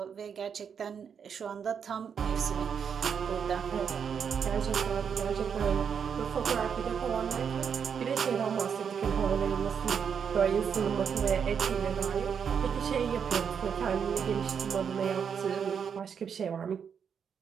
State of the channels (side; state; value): left; quieter; 7.1 dB